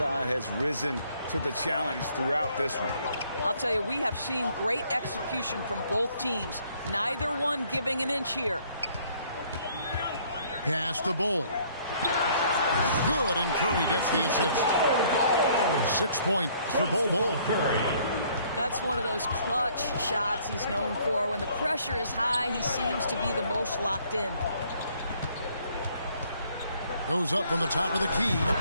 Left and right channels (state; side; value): inverted; both; correlation -0.62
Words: has risen to the challenge throughout this one. I'll tell you, we have seen great execution from both teams. Neither one giving an inch here. Pass to Bull. Good, and Curry gets the assist. 6 points for Bull. Curry. That's one of those clutch shots he's known for. When the pressure is high, he seems to be the most locked in. Goes up from the top of the key.